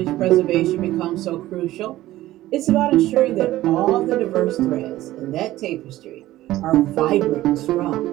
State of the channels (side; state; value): left; quieter; 15.6 dB